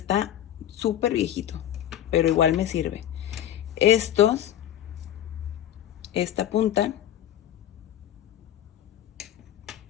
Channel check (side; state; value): right; quieter; 11.4 dB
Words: súper viejito, pero igual me sirve. Estos, esta punta,